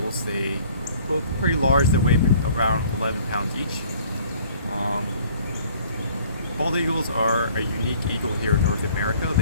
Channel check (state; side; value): inverted; both; correlation -0.54